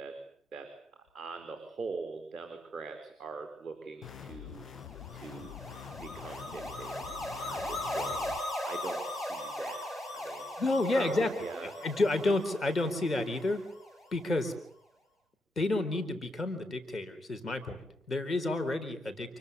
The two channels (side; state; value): both; normal; correlation 0.80